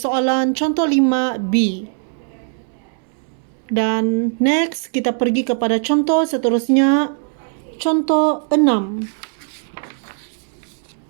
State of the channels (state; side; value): silent; left; 61 dB below the other